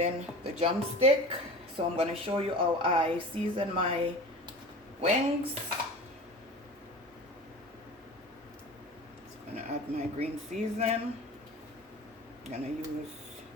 the drumstick. So I'm going to show you how I season my wings. I'm going to add my green season. I'm going to use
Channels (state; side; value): normal; both; correlation 0.36